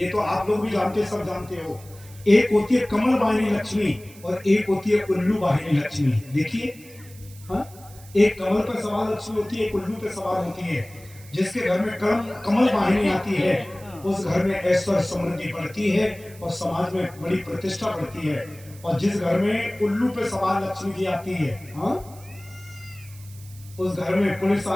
तो आप लोग भी जानते, सब जानते हो। एक होती है कमल वाहिनी लक्ष्मी, और एक होती है उल्लू वाहिनी लक्ष्मी। देखिए, हाँ, एक कमल पर सवार लक्ष्मी होती है, एक उल्लू पे सवार होती है। जिसके घर में कमल वाहिनी आती है, उस घर में ऐश्वर्य समृद्धि बढ़ती है और समाज में बड़ी प्रतिष्ठा बढ़ती है। और जिस घर में उल्लू पे सवार लक्ष्मी जी आती है, हाँ, उस घर में पुलिस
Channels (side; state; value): right; noise; hiss, 22 dB below the sound